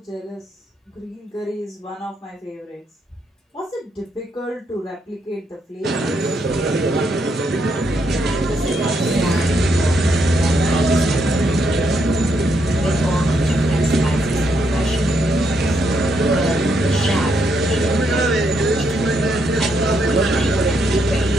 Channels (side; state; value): both; normal; correlation 0.77